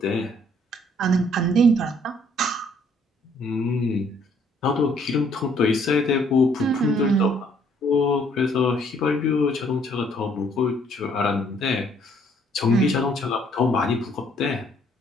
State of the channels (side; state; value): both; normal; correlation 0.64